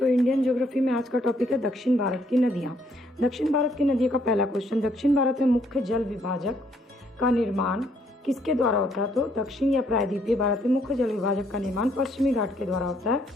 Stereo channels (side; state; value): both; normal; correlation 0.68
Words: इंडियन ज्योग्राफी में आज का टॉपिक है दक्षिण भारत की नदियाँ। दक्षिण भारत की नदियों का पहला क्वेश्चन, दक्षिण भारत में मुख्य जल विभाजक का निर्माण किसके द्वारा होता है? तो दक्षिण या प्रायद्वीपीय भारत में मुख्य जल विभाजक का निर्माण पश्चिमी घाट के द्वारा होता है,